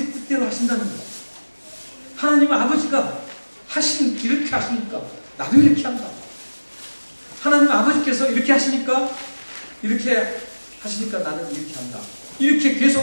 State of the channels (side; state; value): both; inverted; correlation -1.00